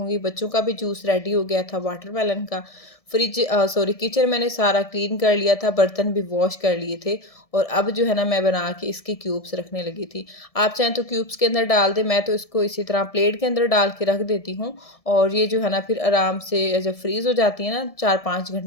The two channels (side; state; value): right; late; 1.7 ms